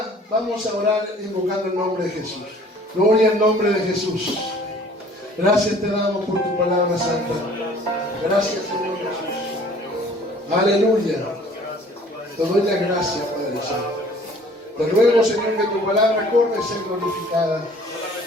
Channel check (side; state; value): both; normal; correlation 0.53